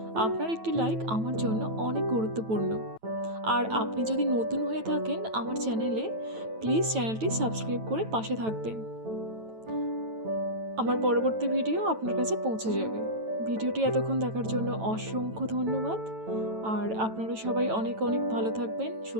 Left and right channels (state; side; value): late; left; 9.1 ms